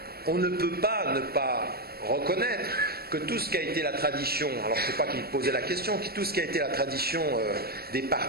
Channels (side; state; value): left; late; 0.45 ms